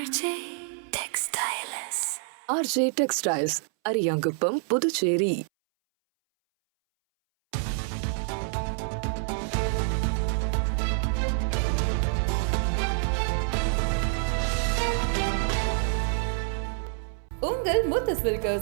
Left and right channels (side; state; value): left; silent; 60 dB below the other